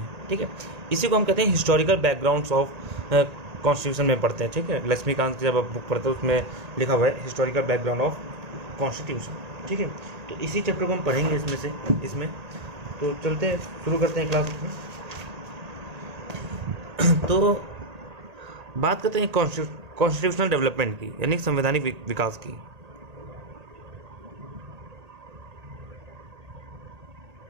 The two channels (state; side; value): late; left; 1.8 ms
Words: ठीक है, इसी को हम कहते हैं हिस्टोरिकल बैकग्राउंड्स ऑफ कॉन्स्टिट्यूशन में पढ़ते हैं। ठीक है, लक्ष्मीकांत की जब आप बुक पढ़ते हैं उसमें लिखा हुआ है हिस्टोरिकल बैकग्राउंड ऑफ कॉन्स्टिट्यूशन। ठीक है, तो इसी चैप्टर को हम पढ़ेंगे इसमें तो चलते हैं, शुरू करते हैं क्लास में। तो बात करते हैं कॉन्स्टिट्यूशनल डेवलपमेंट की, यानी संवैधानिक विकास की।